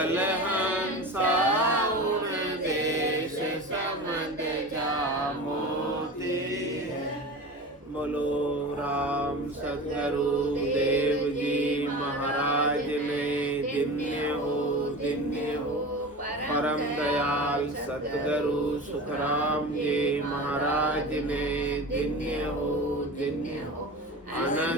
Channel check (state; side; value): normal; both; correlation 0.31